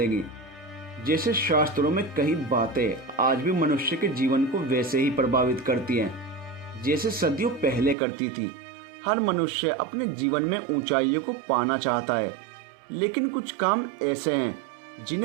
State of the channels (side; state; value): left; drops out; at 8.0 s